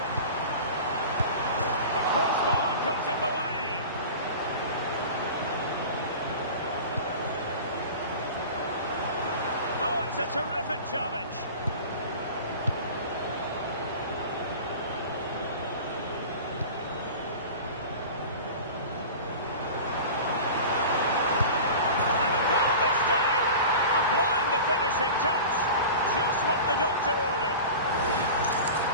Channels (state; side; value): inverted; both; correlation -0.35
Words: The crossbar got in the way. Oh, it's a terrific challenge. Touch, just what the doctor ordered.